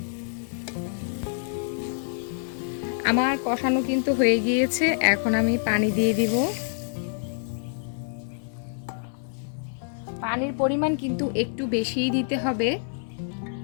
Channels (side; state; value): right; silent; digital silence